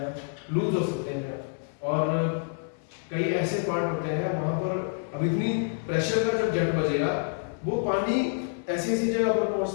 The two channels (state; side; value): silent; right; 60 dB below the other